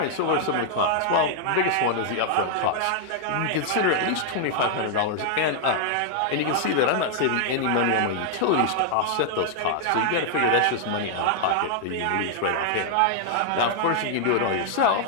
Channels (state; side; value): different; both; correlation 0.00